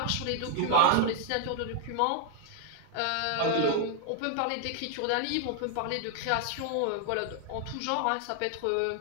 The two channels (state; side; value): different; both; correlation 0.00